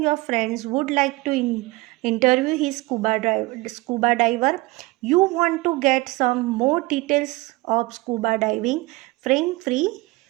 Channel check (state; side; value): quieter; left; 21.6 dB